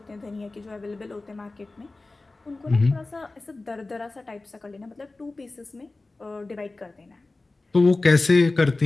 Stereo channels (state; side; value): quieter; right; 3.2 dB